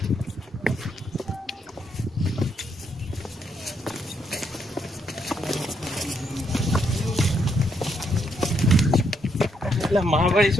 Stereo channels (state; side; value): normal; both; correlation 0.76